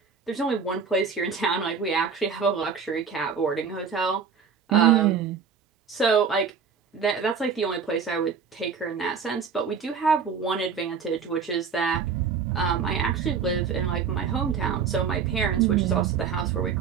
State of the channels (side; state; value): left; quieter; 6.3 dB